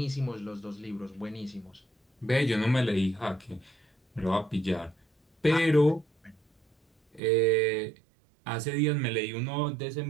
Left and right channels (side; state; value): left; drops out; at 7.2 s